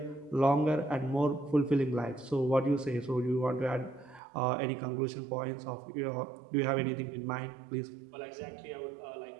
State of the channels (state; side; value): drops out; left; at 4.2 s